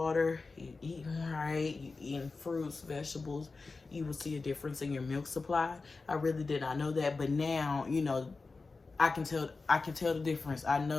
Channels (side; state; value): right; quieter; 4.0 dB